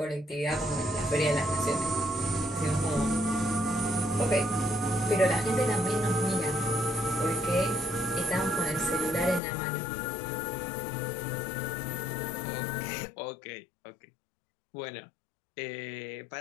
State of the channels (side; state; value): right; drops out; at 9.4 s